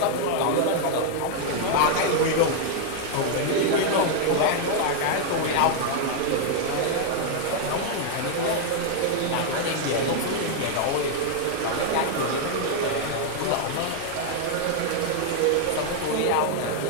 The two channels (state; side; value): different; both; correlation 0.00